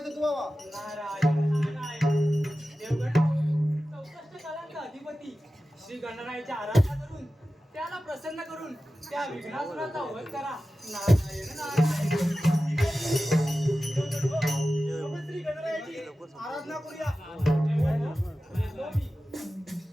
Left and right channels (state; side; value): normal; both; correlation 0.94